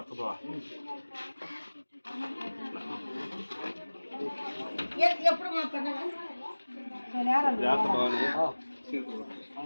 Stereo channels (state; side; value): inverted; both; correlation -1.00